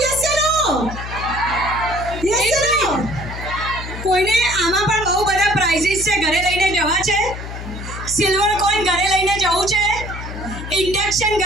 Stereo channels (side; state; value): left; noise; hum, 9 dB below the sound